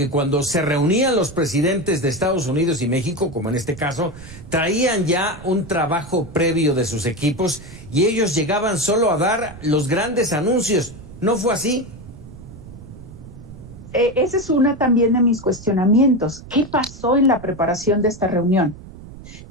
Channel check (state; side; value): noise; right; rumble, 16 dB below the sound